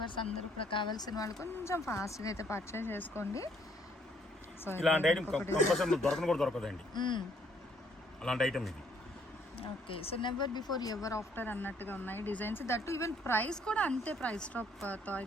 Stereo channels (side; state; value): both; normal; correlation 0.66